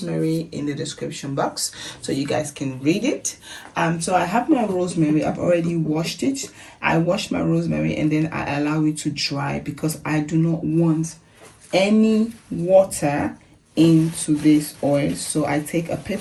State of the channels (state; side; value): identical; both; correlation 1.00